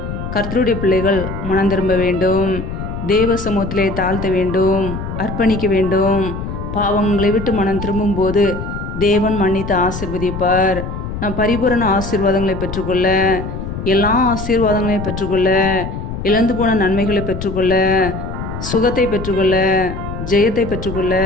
கர்த்தருடைய பிள்ளைகள் மனம் திரும்ப வேண்டும். தேவ சமூகத்திலே தாழ்த்த வேண்டும், அர்ப்பணிக்க வேண்டும். பாவங்களை விட்டு மனம் திரும்பும் போது தேவன் மன்னித்து ஆசீர்வதிப்பார். நாம் பரிபூரண ஆசீர்வாதங்களை பெற்றுக்கொள்ள, எல்லா ஆசீர்வாதங்களையும் பெற்றுக்கொள்ள, இழந்து போன நன்மைகளை பெற்றுக்கொள்ள, சுகத்தை பெற்றுக்கொள்ள, ஜெயத்தை பெற்றுக்கொள்ள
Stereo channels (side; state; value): left; noise; rumble, 7 dB below the sound